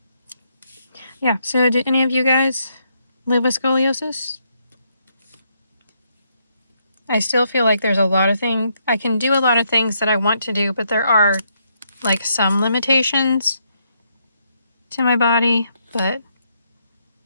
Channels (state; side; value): inverted; both; correlation -0.76